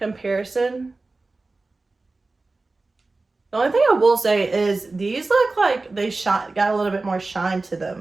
The only thing I will say is these look like they got a little bit more shine to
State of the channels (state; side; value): quieter; left; 3.4 dB